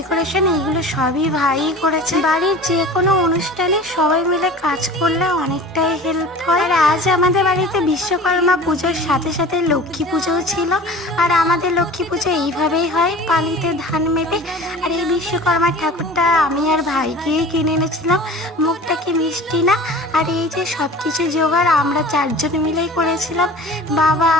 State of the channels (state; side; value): normal; both; correlation 0.40